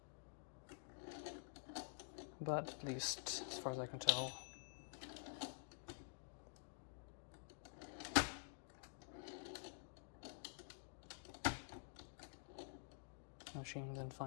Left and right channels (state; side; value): silent; right; digital silence